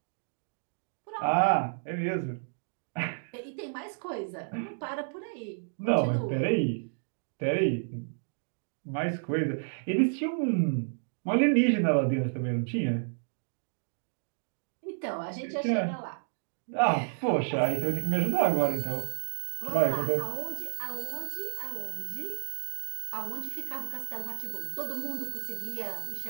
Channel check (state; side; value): silent; left; digital silence